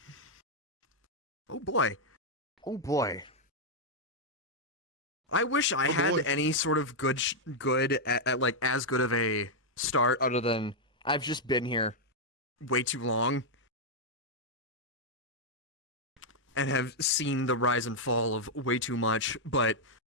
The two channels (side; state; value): both; normal; correlation -0.04